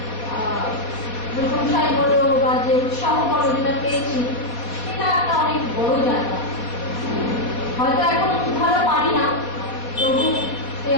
প্রশংসায় বলো বা যে উৎসাহ বলো যেটা পেয়েছি, সেটা একটা অনেক বড় জায়গা। হয়তো এখন খুব ভালো পারি না, তবু সেই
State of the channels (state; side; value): late; right; 4.2 ms